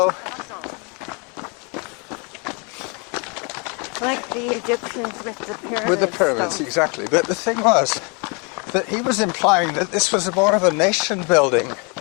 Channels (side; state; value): right; quieter; 33.2 dB